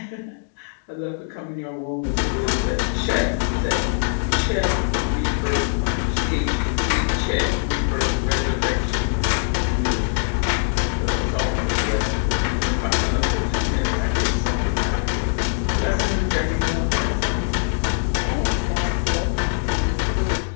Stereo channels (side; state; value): right; silent; digital silence